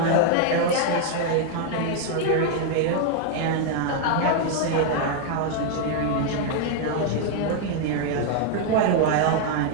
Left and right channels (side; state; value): both; different; correlation 0.00